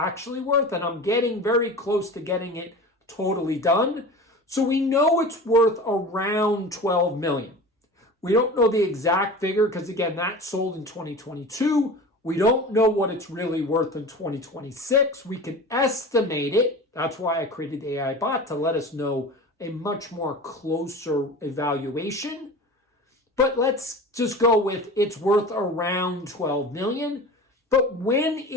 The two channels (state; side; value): normal; both; correlation 0.35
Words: worth, and I'm getting very close to getting it totally done. So we know it's worth around 12 million. We don't know the exact figure because, again, that sold in 2022. We don't know what it's really worth in 2026. We can estimate it. That's why I created the AI bot, to let us know a much more closer evaluation. But let's just go with it's worth around 12 million. But when